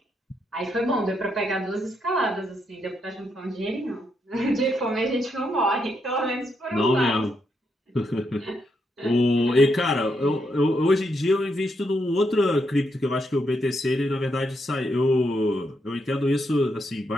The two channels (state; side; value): normal; both; correlation 0.79